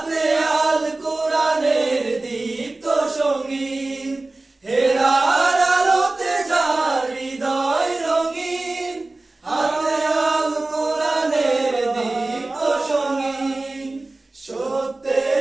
আল কোরআনের দীপ্ত সঙ্গীন। হেরার আলোতে যার হৃদয় রঙিন, হাতে আল কোরআনের দীপ্ত সঙ্গীন।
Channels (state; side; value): quieter; left; 3.1 dB